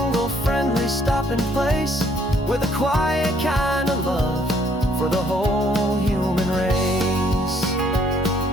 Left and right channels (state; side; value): normal; both; correlation 0.65